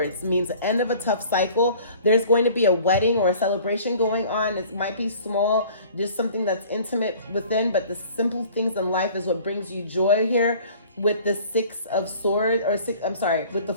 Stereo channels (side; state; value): both; inverted; correlation -0.49